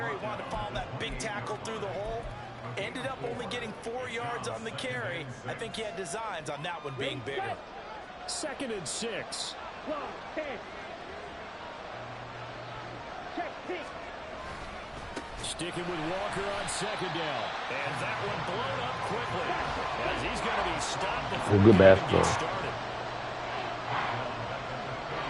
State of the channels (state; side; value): identical; both; correlation 1.00